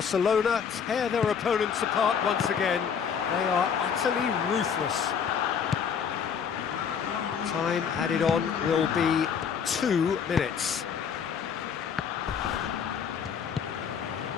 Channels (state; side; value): quieter; right; 7.1 dB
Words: tear their opponents apart once again. They are utterly ruthless. Time added on will be 2 minutes.